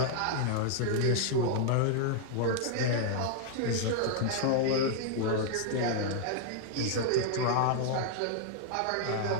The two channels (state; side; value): different; both; correlation 0.00